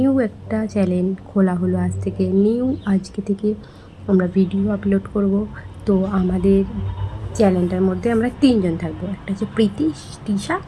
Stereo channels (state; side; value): identical; both; correlation 1.00